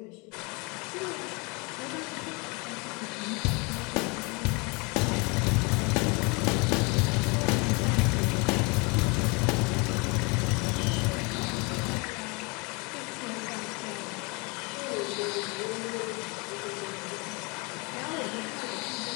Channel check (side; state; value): right; quieter; 29.4 dB